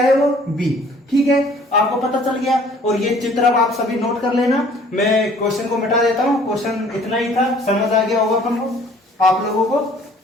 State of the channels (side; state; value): both; normal; correlation 0.55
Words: है वो, बी, ठीक है। आपको पता चल गया। और ये चित्र अब आप सभी नोट कर लेना। मैं क्वेश्चन को मिटा देता हूं। क्वेश्चन इतना ही था, समझ आ गया होगा अपन को, आप लोगों को।